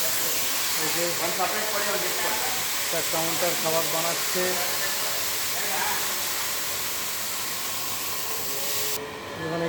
এই যে একটা কাউন্টার খাবার বানাচ্ছে। এখানে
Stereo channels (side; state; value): both; identical; correlation 1.00